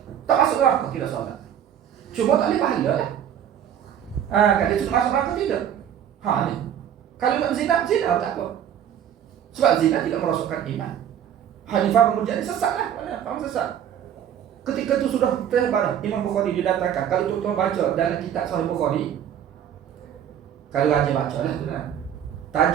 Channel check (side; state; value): left; quieter; 9.6 dB